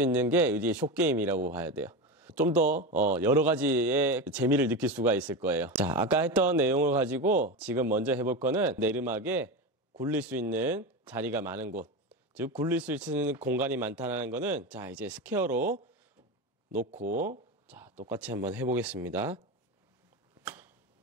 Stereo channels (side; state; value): both; normal; correlation 0.20